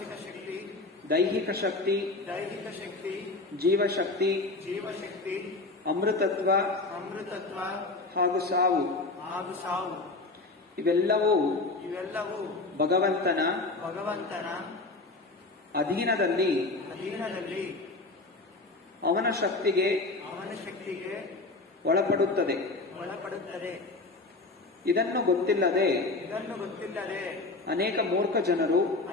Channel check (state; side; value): quieter; right; 3.3 dB